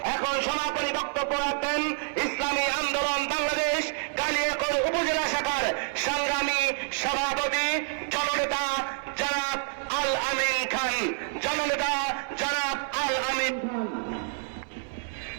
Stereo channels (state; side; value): silent; left; 59 dB below the other